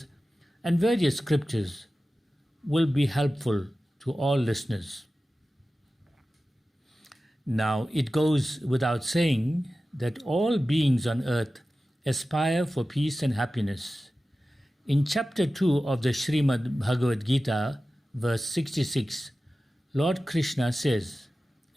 and various scriptures will be helpful to all listeners. Now, it goes without saying that all beings on earth aspire for peace and happiness. In chapter 2 of the Srimad Bhagavad Gita, verse 66, Lord Krishna says,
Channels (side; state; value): both; normal; correlation 0.95